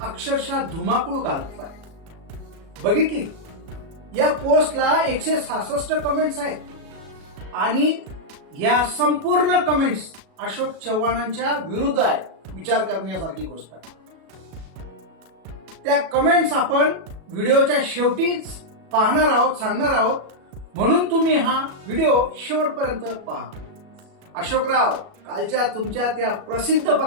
अक्षरशः धुमाकूळ घातलाय। बघितली? या पोस्टला 166 कमेंट्स आहेत आणि या संपूर्ण कमेंट्स अशोक चव्हाणांच्या विरुद्ध आहे। विचार करण्यासारखी गोष्ट आहे। त्या कमेंट्स आपण व्हिडिओच्या शेवटी पाहणार आहोत, सांगणार आहोत, म्हणून तुम्ही हा व्हिडिओ शेवटपर्यंत पहा। अशोकराव, कालच्या तुमच्या त्या प्रसिद्ध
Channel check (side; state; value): left; late; 37 ms